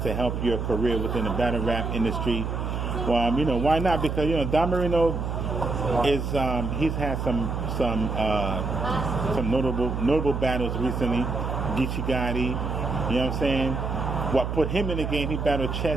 to help your career within the battle rap industry. Well, why not? Because Don Marino is he's had some notable battles recently. Geechee Gotti, you know what I'm saying? What put him in the game? He battled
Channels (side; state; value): right; noise; hum, 3 dB below the sound